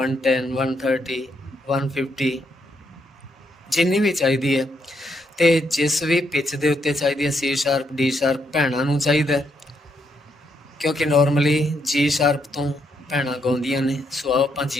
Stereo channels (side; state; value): both; normal; correlation 0.77